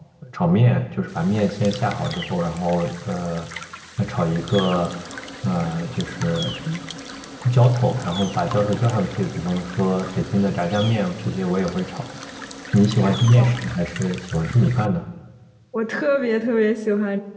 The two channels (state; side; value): identical; both; correlation 1.00